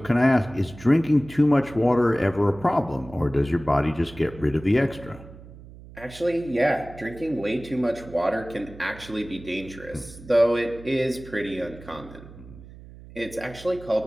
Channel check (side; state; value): right; noise; hum, 18 dB below the sound